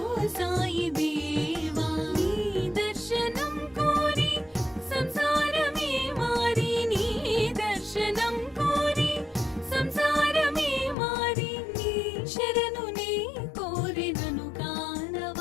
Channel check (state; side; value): drops out; right; at 11.0 s